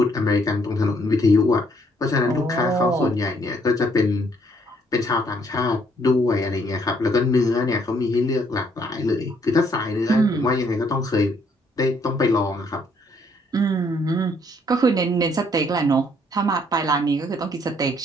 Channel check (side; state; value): both; normal; correlation 0.67